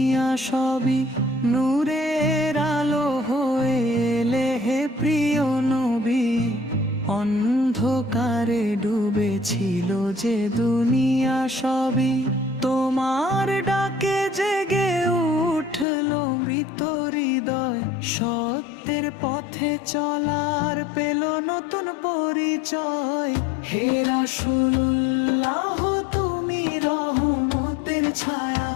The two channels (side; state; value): right; drops out; at 15.9 s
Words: সবই নূরের আলো হয়ে এলে হে প্রিয় নবী। অন্ধকারে ডুবেছিল যে দুনিয়া সবই তোমার ডাকে জেগে উঠলো মৃত হৃদয়। সত্যের পথে চলার পেল নতুন পরিচয়। হে রাসূলুল্লাহ তুমি রহমতের ছায়া,